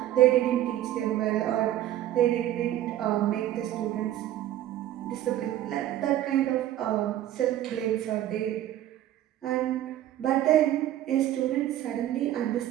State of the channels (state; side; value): quieter; left; 12.9 dB